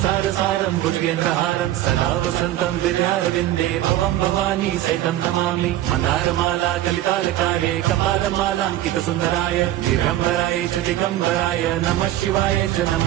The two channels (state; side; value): quieter; left; 13.7 dB